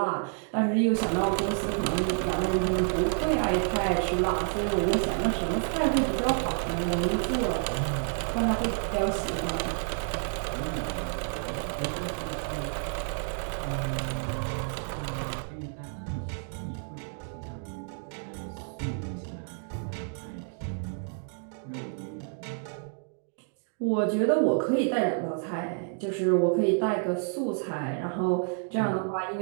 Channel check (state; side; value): silent; left; 58 dB below the other